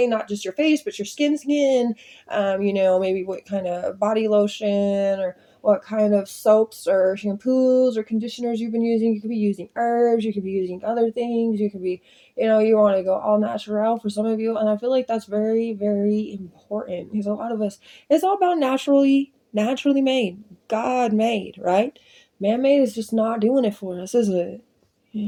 not just your face but your skin. Maybe what kind of body lotion or what kind of soaps or shampoos or conditioners you've been using. You could be using herbs, you could be using other things, you could be, you want to go all natural for some of you. And I feel like that's very, very important, because a lot of us, it's all about naturally made, God made, right? Man made is just not doing it for us, is it?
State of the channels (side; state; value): both; identical; correlation 1.00